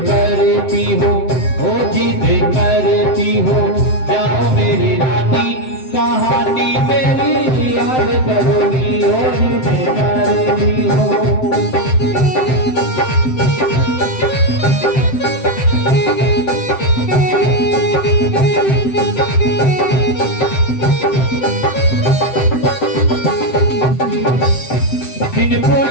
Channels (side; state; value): right; late; 7.7 ms